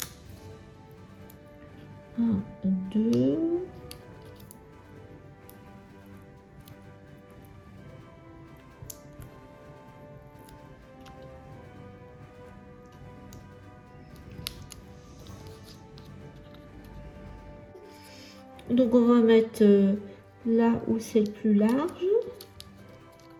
2. Donc on va mettre là où c'est le plus large.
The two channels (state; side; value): identical; both; correlation 1.00